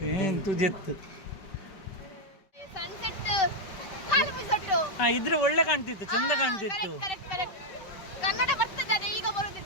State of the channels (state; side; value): late; right; 5.2 ms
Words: तुजेत ಸನ್ಸೆಟ್ ಇದ್ರೆ ಒಳ್ಳೆ ಕಾಣ್ತಿತ್ತು, ಚಂದ ಕಾಣ್ತಿತ್ತು. ಕನ್ನಡ ಬರ್ತದೆ, ಈಗ